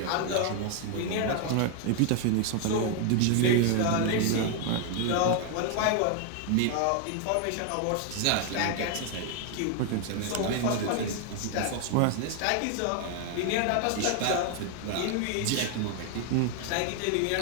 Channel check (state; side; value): different; both; correlation 0.00